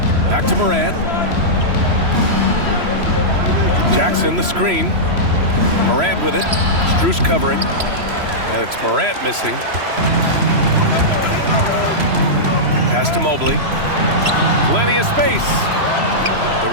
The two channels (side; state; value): left; late; 3.0 ms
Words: Back to Morant. Jackson the screen. Morant with it. Strus covering. And it's Morant missing. Pass to Mobley. Plenty of space. The